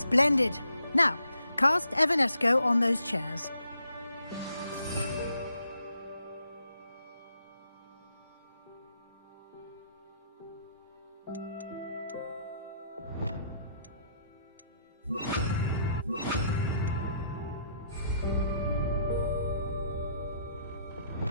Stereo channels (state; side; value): inverted; both; correlation -0.71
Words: Splendid. Now, cast Evanesco on those chairs.